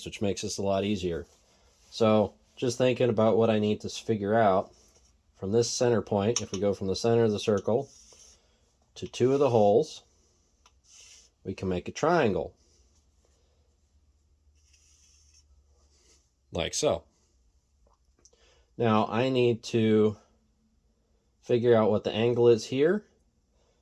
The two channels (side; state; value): both; identical; correlation 1.00